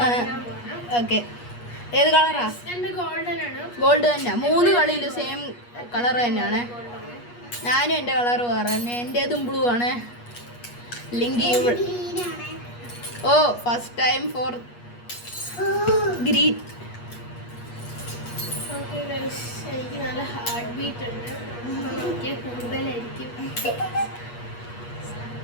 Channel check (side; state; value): right; late; 8.4 ms